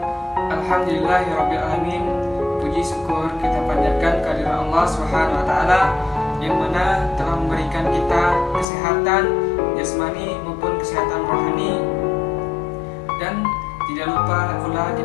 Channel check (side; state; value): right; drops out; at 8.7 s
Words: Alhamdulillahirabbil alamin. Puji syukur kita panjatkan kehadirat Allah Subhanahu wa taala yang mana telah memberikan kita kesehatan jasmani maupun kesehatan rohani, dan tidak lupa pula